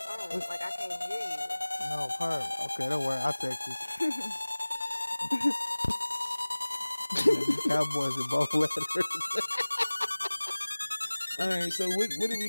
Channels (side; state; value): both; inverted; correlation -1.00